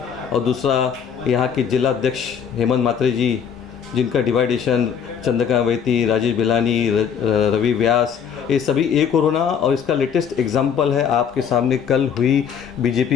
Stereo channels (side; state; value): right; quieter; 7.5 dB